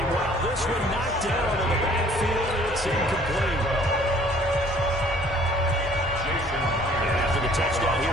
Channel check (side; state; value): both; normal; correlation 0.56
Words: this one knocked down in the backfield. It's incomplete. And after the touchdown,